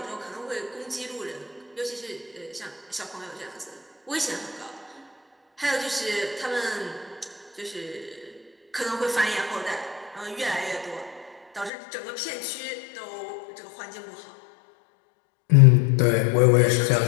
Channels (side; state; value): right; drops out; at 11.7 s